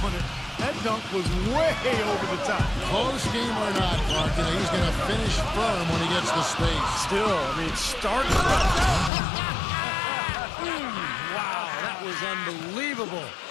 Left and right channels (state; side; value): drops out; right; at 9.1 s